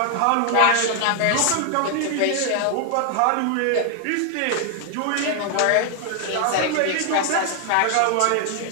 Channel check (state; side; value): different; both; correlation 0.00